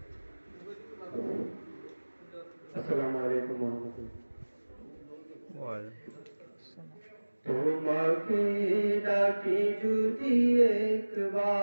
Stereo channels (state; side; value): inverted; both; correlation -1.00